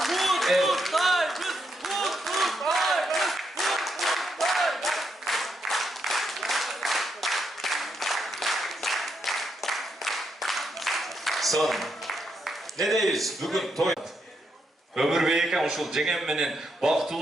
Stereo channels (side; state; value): both; normal; correlation 0.80